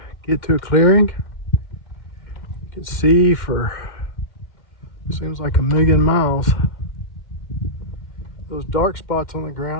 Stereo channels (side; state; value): right; late; 2.1 ms